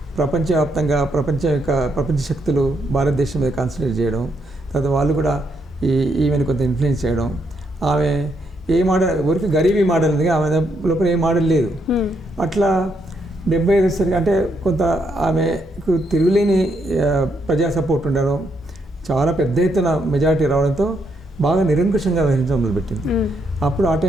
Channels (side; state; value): both; normal; correlation 0.77